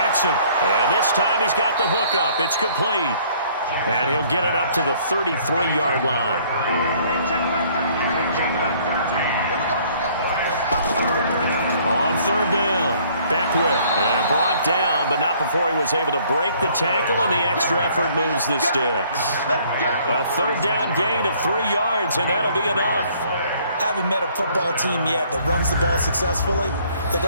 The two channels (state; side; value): inverted; both; correlation -0.60